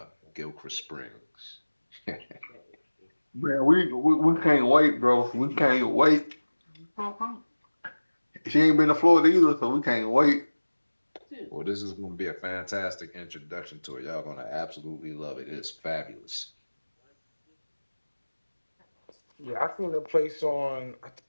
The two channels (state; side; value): inverted; both; correlation -1.00